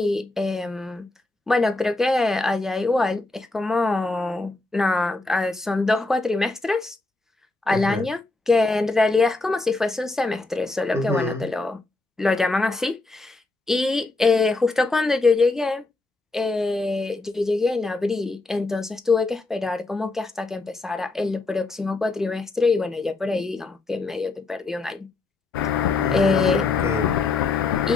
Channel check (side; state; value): right; quieter; 3.3 dB